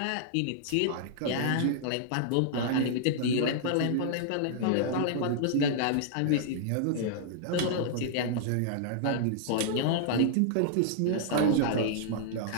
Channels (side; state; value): both; different; correlation -0.01